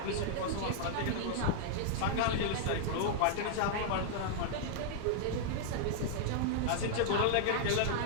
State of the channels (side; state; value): both; different; correlation -0.01